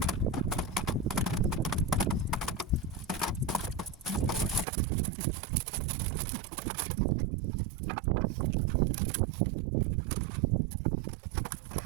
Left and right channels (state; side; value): drops out; left; at 4.7 s